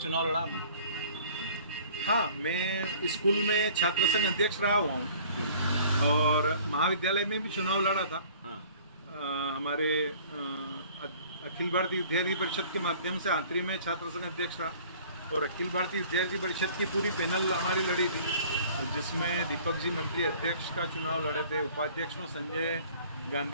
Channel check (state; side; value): inverted; both; correlation -0.51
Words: लड़ा आपने? हाँ, मैं स्कूल में छात्र संघ अध्यक्ष रहा हुआ हूँ और महाविद्यालय में भी चुनाव लड़ा था। हाँ। हमारे अखिल भारतीय विद्यार्थी परिषद के माध्यम से आंतरी में छात्र संघ अध्यक्ष रहा, और अखिल भारतीय विद्यार्थी परिषद की पूरी पैनल हमारी लड़ी थी, जिसमें दीपक जी मंत्री अध्यक्ष का चुनाव लड़े थे, उपाध्यक्ष में संजय